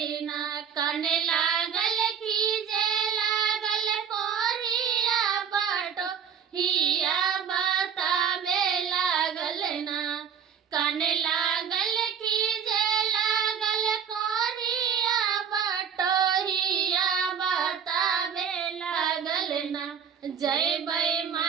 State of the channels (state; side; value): quieter; left; 7.6 dB